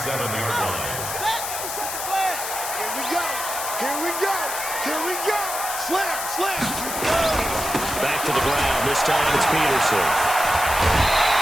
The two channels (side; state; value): left; noise; hiss, 5 dB below the sound